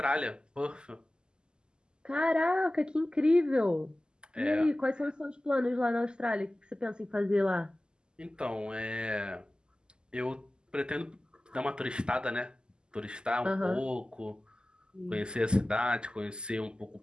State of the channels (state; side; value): late; left; 0.047 ms